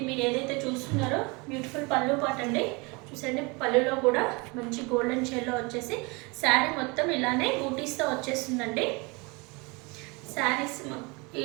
మీరు ఏదైతే చూస్తున్నారో బ్యూటిఫుల్ పళ్ళు పాట్ అండి. చూసండి పళ్ళులో కూడా మంచి గోల్డెన్ షేడ్లో వచ్చేసి శారీ మొత్తం ఇలానే బూటీస్తో వచ్చేస్తుందండి. శారీస్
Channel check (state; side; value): quieter; left; 27.9 dB